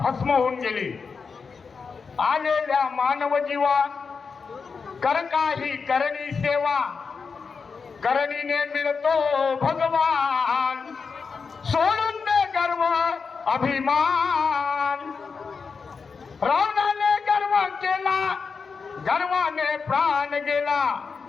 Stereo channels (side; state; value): right; quieter; 5.2 dB